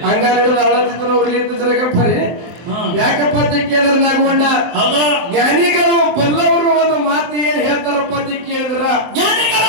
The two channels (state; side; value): late; left; 24 ms